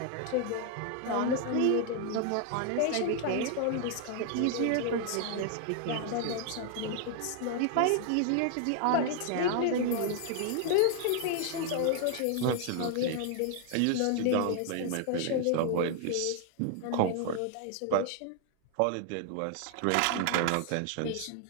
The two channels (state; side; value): different; both; correlation 0.00